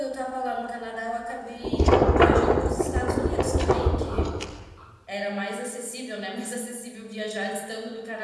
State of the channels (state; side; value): identical; both; correlation 1.00